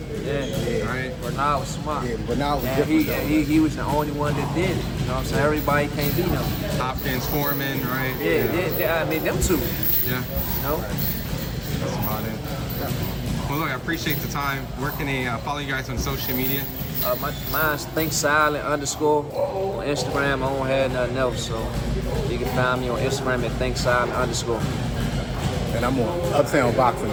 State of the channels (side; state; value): both; identical; correlation 1.00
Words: right? Bernard was smart. Yeah, Bernard was different. He was the only one that did it. You know what I'm saying? Everybody can't beat him. Hopkins, Foreman, right? Yeah. I mean, them two. Yeah. You know? That's about it. Yeah. Well, look, I appreciate the time. Where can they follow you guys on social media? Mine's ThinkSilent_ on Instagram. I don't have nothing else, so you can find me on Instagram at ThinkSilent_. And I'm on Uptown Boxing